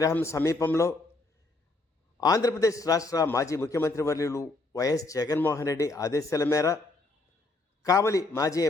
సమీపంలో ఆంధ్రప్రదేశ్ రాష్ట్ర మాజీ ముఖ్యమంత్రి వర్యులు వైఎస్ జగన్మోహన్ రెడ్డి ఆదేశాల మేర కావలి మాజీ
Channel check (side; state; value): right; quieter; 3.2 dB